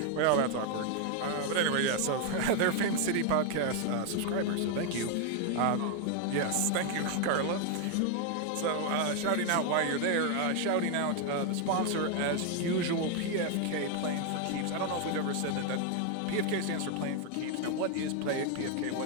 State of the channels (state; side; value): different; both; correlation 0.01